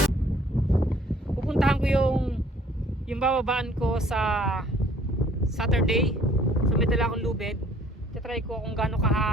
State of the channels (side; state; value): both; normal; correlation 0.57